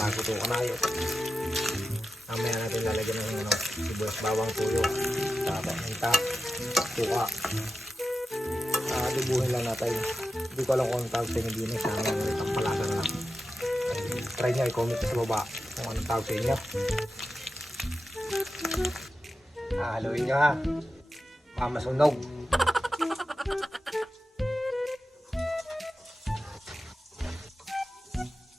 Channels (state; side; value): normal; both; correlation 0.91